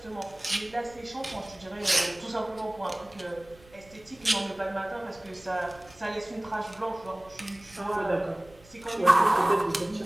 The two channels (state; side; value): noise; right; rumble, 25 dB below the sound